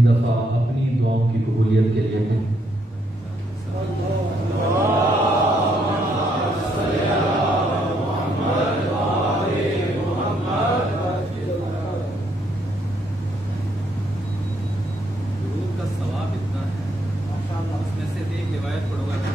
دفعہ اپنی دعاؤں کی قبولیت کے لیے کہیں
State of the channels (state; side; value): normal; both; correlation 0.73